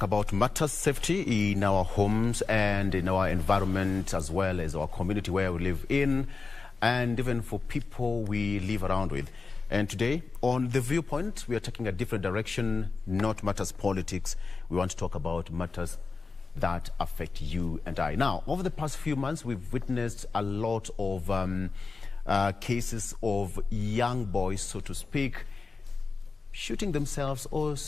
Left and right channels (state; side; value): quieter; right; 4.3 dB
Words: about matters safety in our homes and in our environment, as well as our community where we live in, and even for people we live around with. And today on The Viewpoint, we are taking a different direction, not matters politics. We want to talk about matters that affect you and I. Now, over the past few months, we've witnessed a lot of cases of young boys, so to speak, shooting themselves or,